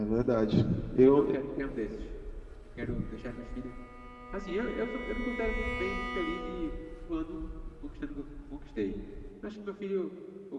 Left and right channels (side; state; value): both; identical; correlation 1.00